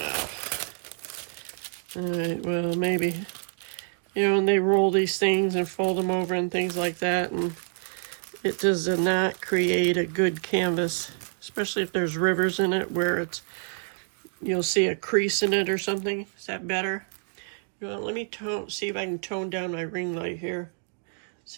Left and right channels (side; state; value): left; silent; digital silence